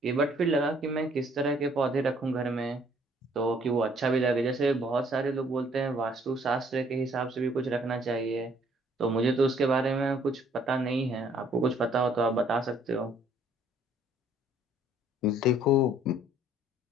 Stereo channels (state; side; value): normal; both; correlation 0.61